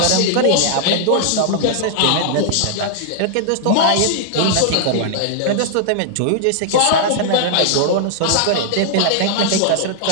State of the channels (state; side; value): different; both; correlation -0.01